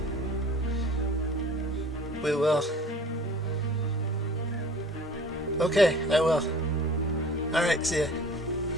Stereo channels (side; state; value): both; normal; correlation 0.45